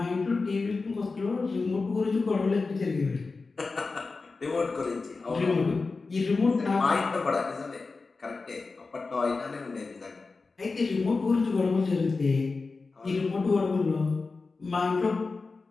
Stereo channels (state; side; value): quieter; right; 4.0 dB